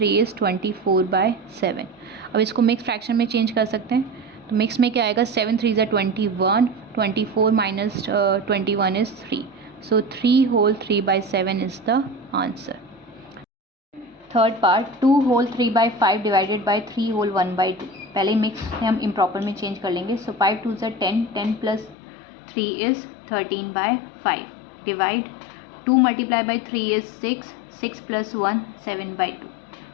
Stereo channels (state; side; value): drops out; right; at 22.0 s